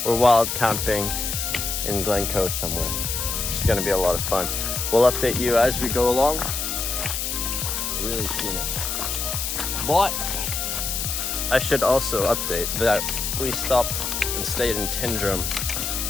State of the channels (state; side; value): noise; left; hiss, 2 dB below the sound